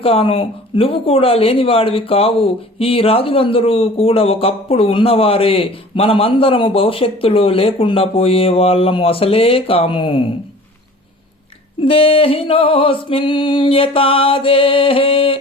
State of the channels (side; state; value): both; normal; correlation 0.45